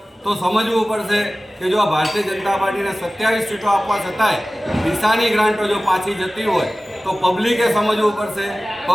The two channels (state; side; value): normal; both; correlation 0.97